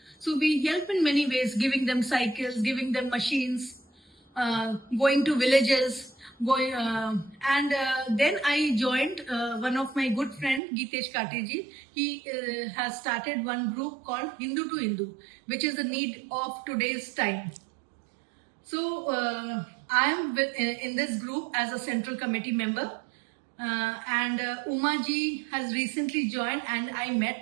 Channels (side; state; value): left; drops out; at 10.6 s